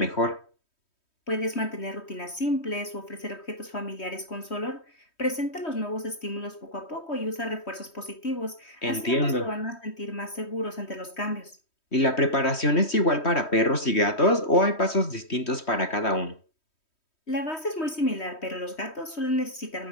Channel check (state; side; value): late; right; 3.1 ms